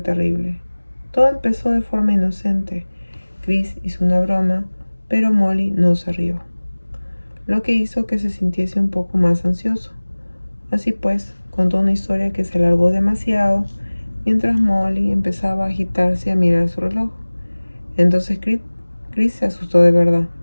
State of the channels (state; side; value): inverted; both; correlation -1.00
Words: terrible. Todo empezó de forma inocente. Chris hizo una broma, pero Molly no se rió, lo que hizo que se sintiese un poco más ansioso. Así pues, contó una historia que se alargó demasiado, mientras Molly empezaba a agitarse y a mirar su reloj. Entonces Chris se asustó de verdad.